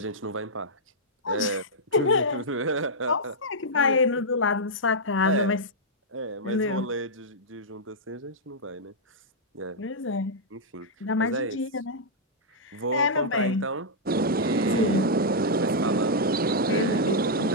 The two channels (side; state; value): both; normal; correlation -0.07